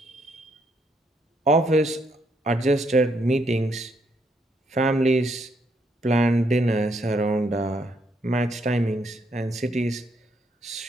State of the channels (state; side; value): normal; both; correlation 0.74